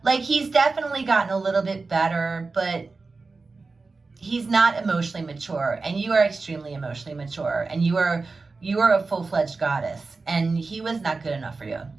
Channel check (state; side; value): quieter; left; 4.0 dB